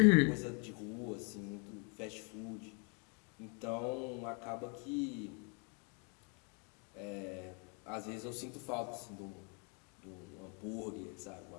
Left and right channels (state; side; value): quieter; right; 36.3 dB